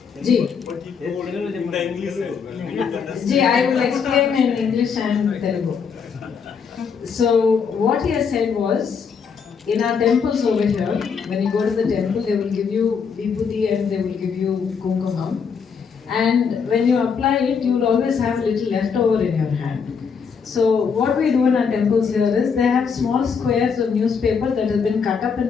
जी, I will explain in English and Telugu. So what he has said was, in our temples over here, when you go to the temple, they will give you vibhuti and they will give you kumkumam. And when you apply it, you will always have a little leftover in your hand. So what we do in our temples here is, they have small squares of newspaper that has been cut up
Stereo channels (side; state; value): right; quieter; 6.2 dB